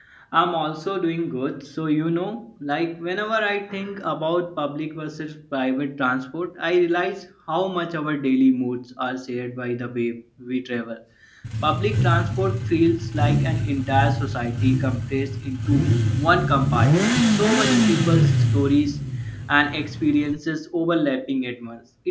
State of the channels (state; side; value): identical; both; correlation 1.00